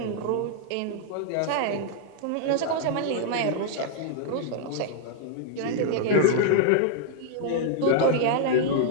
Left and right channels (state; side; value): different; both; correlation 0.00